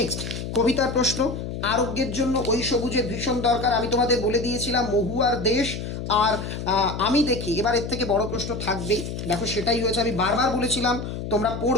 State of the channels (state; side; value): noise; left; hum, 6 dB below the sound